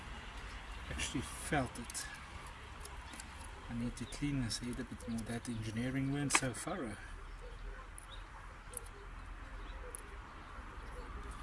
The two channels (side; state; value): both; identical; correlation 1.00